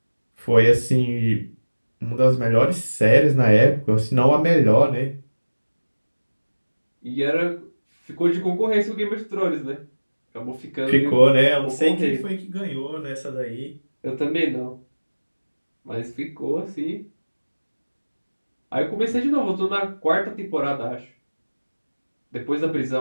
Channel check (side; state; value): both; inverted; correlation -1.00